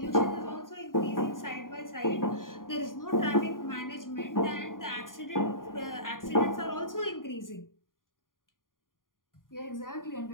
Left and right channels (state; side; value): late; right; 0.90 ms